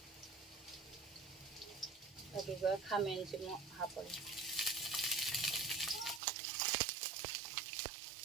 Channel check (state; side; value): drops out; left; at 6.2 s